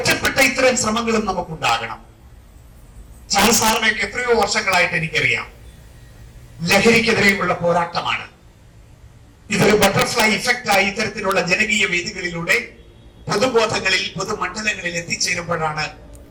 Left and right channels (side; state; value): both; identical; correlation 1.00